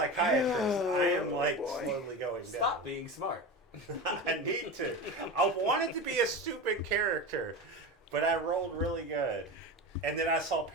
I am like boy. slowly going Stop down. being smart. I need to. I wanted to be a stupid character, but I rolled really good. And then I saw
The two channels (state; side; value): normal; both; correlation 0.25